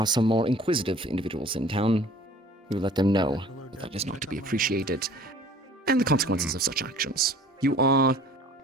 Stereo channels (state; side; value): normal; both; correlation 0.49